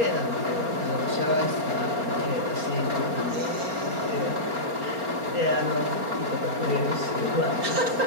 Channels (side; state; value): left; late; 4.3 ms